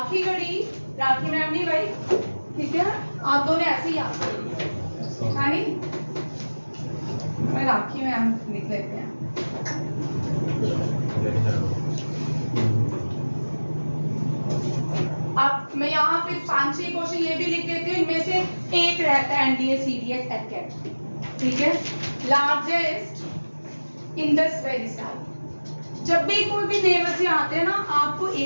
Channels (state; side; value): inverted; both; correlation -1.00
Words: राखी मैम नहीं भाई, ठीक है, आप दोनों ऐसे ही याद करोगे, है नहीं? मैं राखी मैम लिख लेते हैं। अब मैं यहाँ पे 5-6 क्वेश्चन ये भी लिख देती हूँ, इनमें से एक रहता है एनडीए सीडीएस एकेट, ठीक है। Largest Indus valley site. जब भी कोई भी नए बच्चे आते हैं ना, आपको